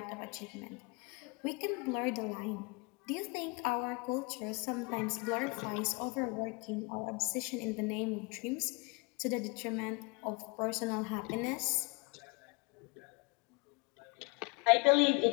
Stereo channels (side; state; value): right; quieter; 28.7 dB